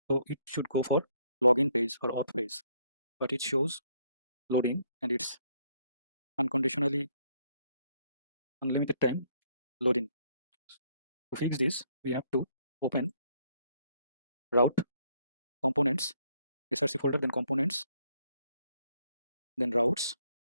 so it should go for login page or auth page, but it shows loading and it's unconditionally unlimited time loading. To fix this, we have to open route components, src folder, then components, then routes,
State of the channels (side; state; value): both; inverted; correlation -0.69